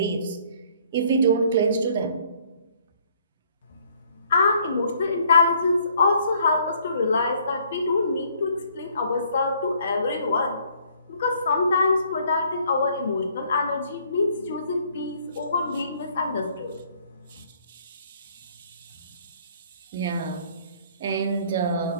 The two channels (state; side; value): inverted; both; correlation -0.62